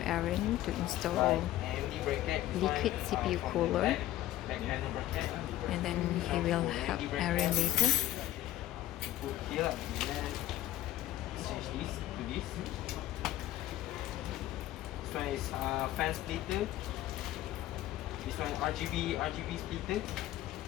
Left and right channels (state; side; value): quieter; right; 14.3 dB